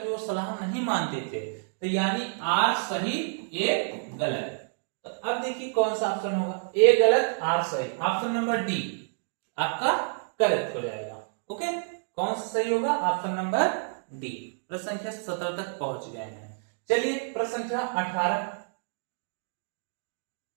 वो सलाह नहीं मानते थे, तो यानी आर सही ए गलत। तो अब देखिए कौन सा ऑप्शन होगा, ए गलत आर सही, ऑप्शन नंबर डी आपका करेक्ट हो जाएगा। ओके, कौन सा सही होगा, ऑप्शन नंबर डी। प्रश्न संख्या 17 तक पहुंच गए हैं। चलिए प्रश्न संख्या 18।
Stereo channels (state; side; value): silent; left; digital silence